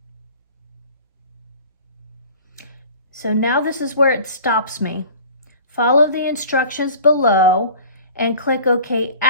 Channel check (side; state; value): both; inverted; correlation -0.44